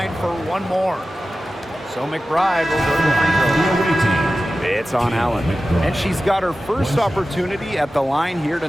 for one more. So McBride will go to the free throw. It's on Allen. And she's got her first opportunity at the line here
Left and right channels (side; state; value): both; normal; correlation 0.94